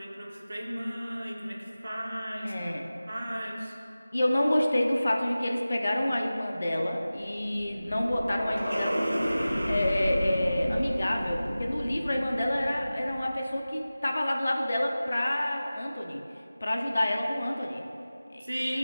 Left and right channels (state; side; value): inverted; both; correlation -0.97